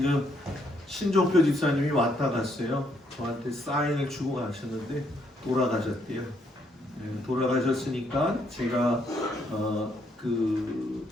신종표 집사님이 왔다 갔어요. 저한테 사인을 주고 가셨는데 돌아가셨대요. 돌아가셨으니까 제가 그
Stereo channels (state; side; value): normal; both; correlation 0.72